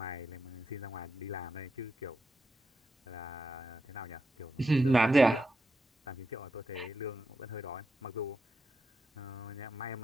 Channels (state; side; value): normal; both; correlation 0.84